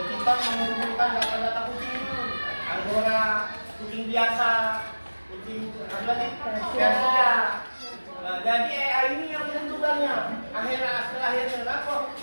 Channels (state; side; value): inverted; both; correlation -1.00